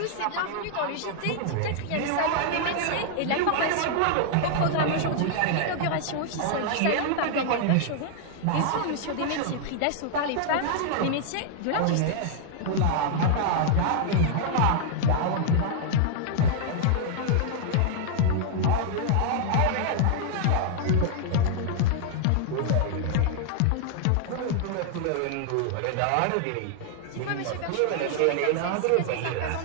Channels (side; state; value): both; different; correlation 0.00